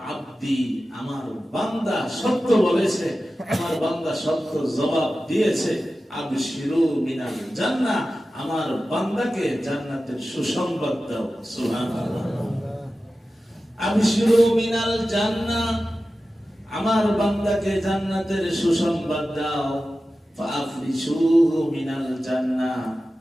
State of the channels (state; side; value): normal; both; correlation 0.94